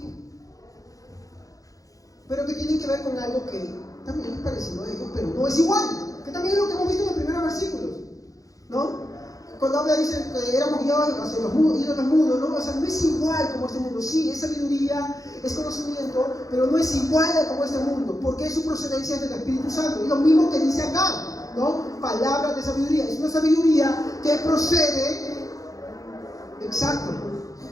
pero que tienen que ver con algo que también es parecido a ellos, pero no es igual, que también es lo que hemos visto en los primeros versículos, ¿no? Cuando habla, dice que éramos guiados hacia los ídolos mudos, ¿no? O sea, no es igual como este mundo. Sí, es sabiduría, es conocimiento, pero no es igual como este mundo, porque su procedencia es del Espíritu Santo. Y lo mismo que dice acá, ¿no? Palabras de sabiduría. Es una sabiduría que procede, exacto.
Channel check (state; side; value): late; right; 0.17 ms